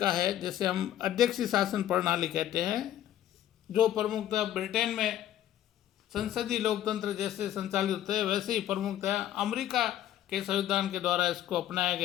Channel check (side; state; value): right; quieter; 11.9 dB